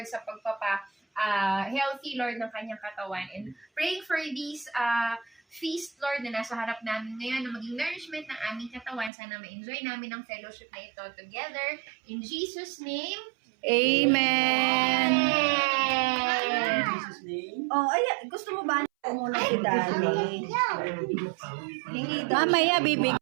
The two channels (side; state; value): left; drops out; at 9.1 s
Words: sa healthy, Lord, ng kanyang katawan. And praying for this feast, Lord, na nasa harap namin ngayon, na maging nourishment ng aming katawan. Sana ma-enjoy namin ang fellowship na ito together. In Jesus' name, Amen. Oh, ay, gusto mo ba muna si Daddy? Hingi daw. Mamaya, bibig.